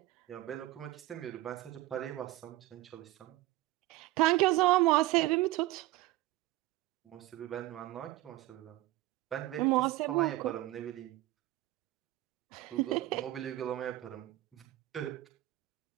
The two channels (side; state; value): left; quieter; 17.0 dB